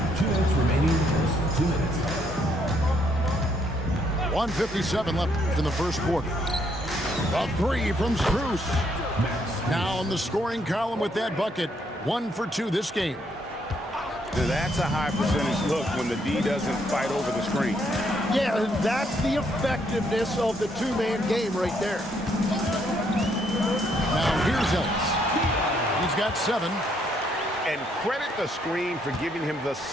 2 minutes remaining in the first. 2 minutes. 1:57 left in the first quarter. A three from Strus. Now in the scoring column with that bucket. 1 for 2 this game. That's a high percentage look when the D doesn't fight over the screen. Yeah, and that's the effectiveness of the two-man game right there. Now here's Ellis. He's got 7. And credit the screen for giving him the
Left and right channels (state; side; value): normal; both; correlation 0.72